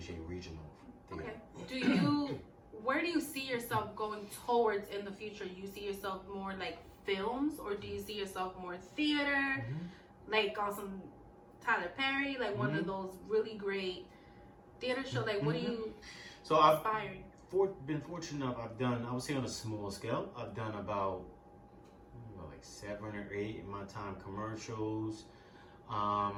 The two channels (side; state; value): both; identical; correlation 1.00